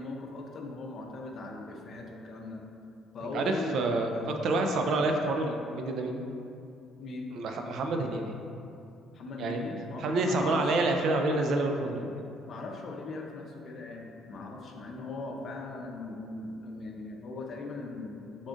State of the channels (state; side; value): normal; both; correlation 0.65